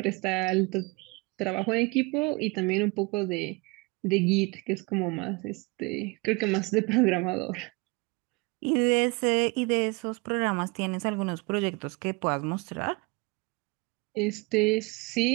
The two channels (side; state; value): left; quieter; 27.1 dB